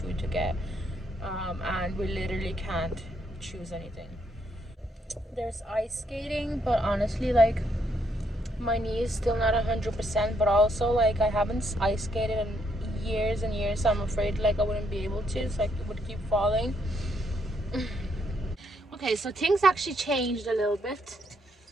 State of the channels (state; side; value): normal; both; correlation 0.74